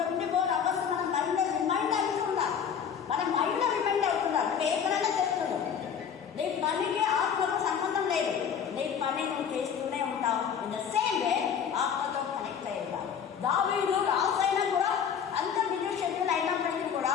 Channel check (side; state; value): right; quieter; 7.7 dB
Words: hours మన మైండ్ రిమైండ్ అవుతుండాలి, మన మైండ్ రిమైండ్ అవుతుండాలి. ఎక్కడైనా చేస్తున్నాం, నీ పనికి ఆత్మకు సంబంధం లేదు, నీ పని నువ్వు చేస్తూనే ఉంటావు. ఇన్ ద సేమ్ వే ఆత్మతో కనెక్ట్ అయ్యి ఉంటావు. దావీదు రాజైనా కూడా అంత బిజీ షెడ్యూల్ అయినప్పటికీ కూడా